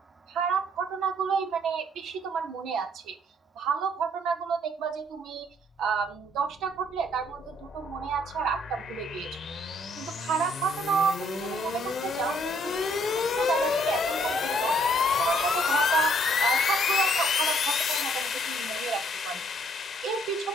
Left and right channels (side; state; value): both; normal; correlation 0.65